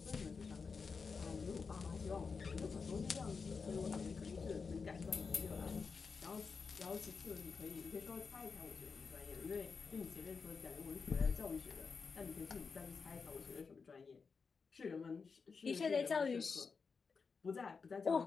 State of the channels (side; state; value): right; quieter; 5.1 dB